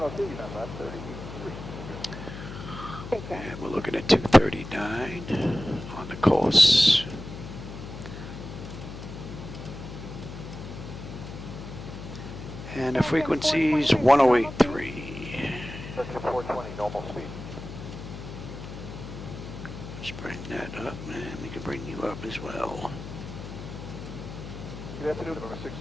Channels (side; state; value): left; noise; hum, 10 dB below the sound